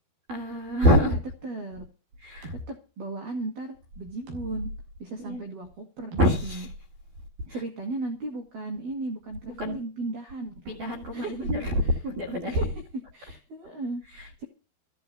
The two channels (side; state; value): left; late; 12 ms